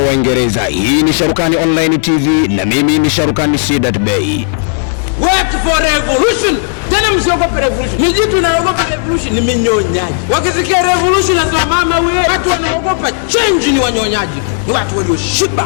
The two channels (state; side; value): silent; right; digital silence